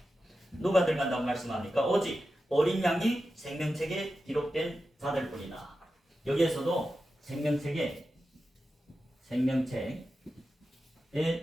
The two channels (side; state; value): both; normal; correlation 0.91